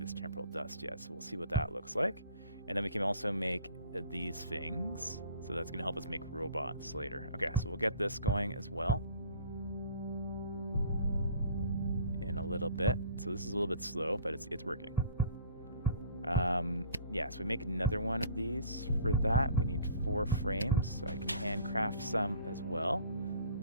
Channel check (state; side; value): inverted; both; correlation -0.49